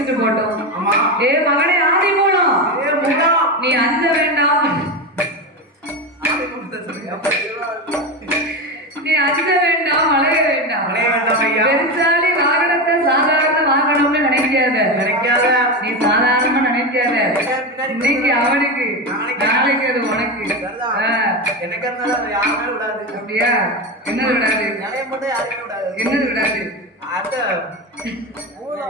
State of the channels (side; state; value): both; normal; correlation 0.18